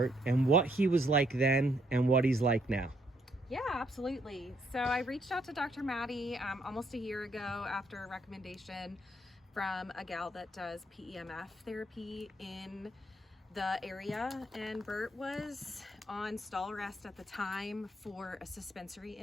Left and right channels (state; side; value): normal; both; correlation 0.71